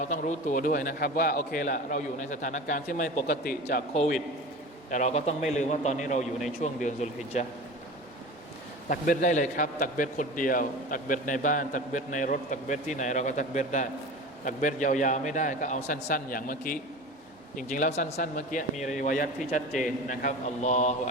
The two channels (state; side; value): normal; both; correlation 0.33